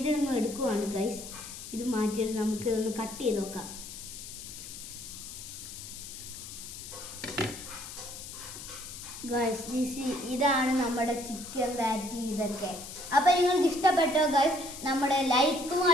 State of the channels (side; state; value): left; noise; hiss, 11 dB below the sound